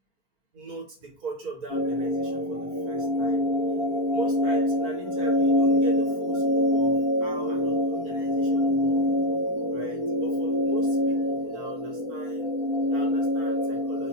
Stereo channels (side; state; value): left; late; 4.4 ms